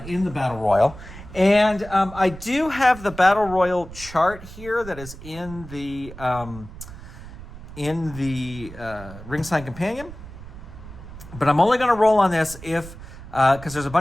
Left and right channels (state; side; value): noise; right; rumble, 15 dB below the sound